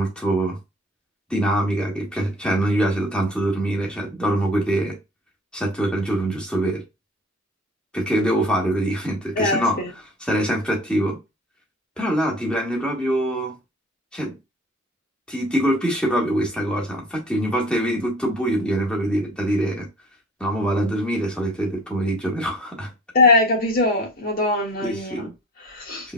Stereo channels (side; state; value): both; normal; correlation 0.48